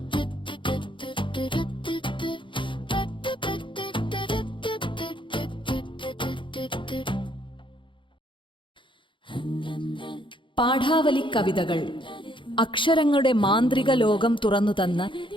പാഠാവലി കവിതകൾ അക്ഷരങ്ങളുടെ മാന്ത്രിക ലോകം തുറന്നുതന്ന്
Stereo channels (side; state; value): right; late; 0.24 ms